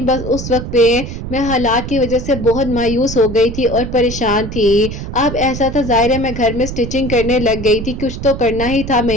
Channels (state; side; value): noise; right; rumble, 7 dB below the sound